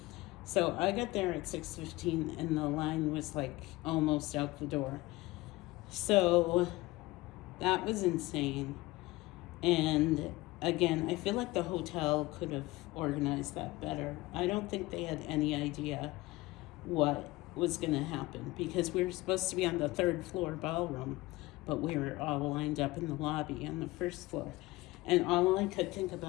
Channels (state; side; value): quieter; right; 20.3 dB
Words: So I got there at 6:15, and the line was like almost out the door. So that was insane. And again, I feel like the hotel could have organized that better. I don't think they had any idea what was going to happen, because we were supposed to be on the 3rd floor ballroom, but we were all lined up in the lobby on the 1st floor. And all I could think